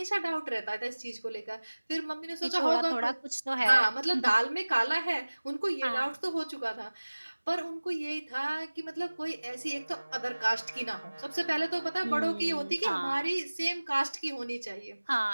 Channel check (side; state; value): both; inverted; correlation -1.00